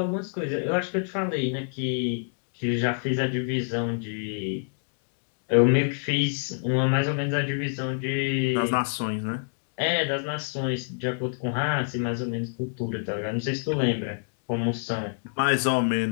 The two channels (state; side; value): silent; right; digital silence